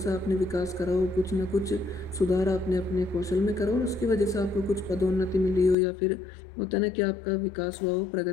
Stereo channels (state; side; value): drops out; right; at 5.8 s